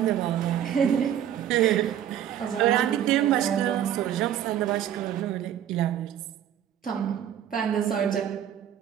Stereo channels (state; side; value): quieter; left; 10.3 dB